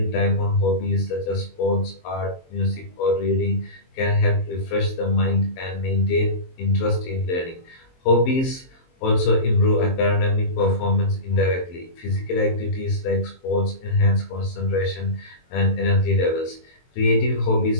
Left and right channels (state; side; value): late; right; 23 ms